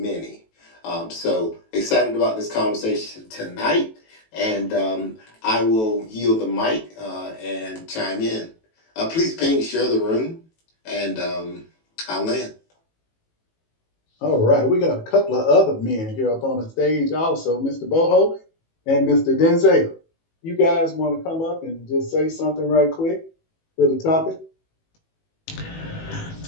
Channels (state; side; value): late; right; 18 ms